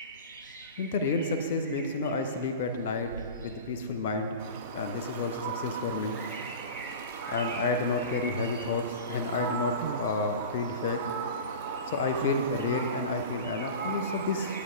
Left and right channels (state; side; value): inverted; both; correlation -0.32